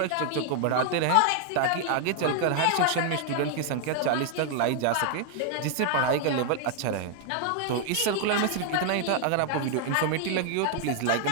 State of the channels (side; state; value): both; different; correlation 0.00